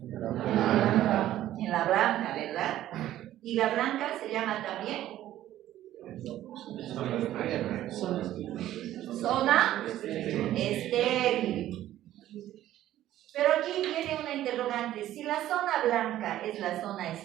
En la blanca, ¿verdad? Y la blanca se llama también zona estéril. Pero aquí viene una interrogante. Si la zona blanca es la zona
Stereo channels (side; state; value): left; quieter; 13.3 dB